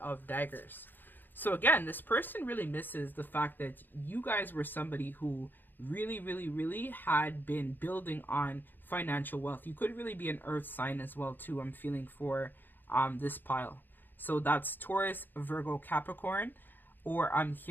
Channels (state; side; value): late; right; 0.092 ms